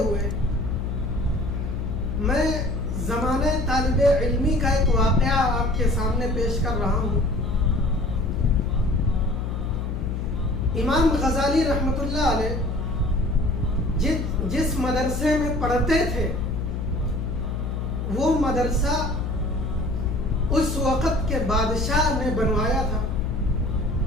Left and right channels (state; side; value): noise; left; hum, 3 dB below the sound